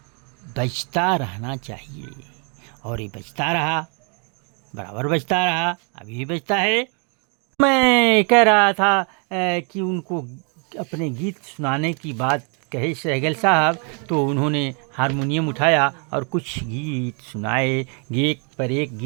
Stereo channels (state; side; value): quieter; left; 37.2 dB